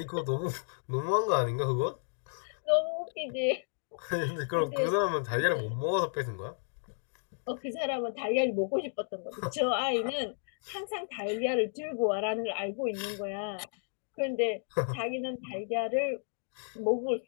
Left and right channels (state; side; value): silent; right; digital silence